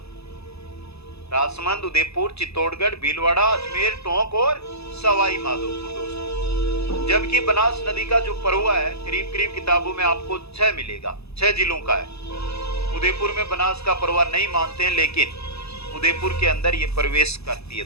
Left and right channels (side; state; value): right; late; 0.79 ms